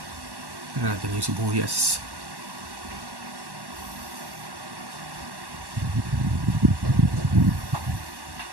Tira natin yung sibuyas.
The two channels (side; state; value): left; late; 1.1 ms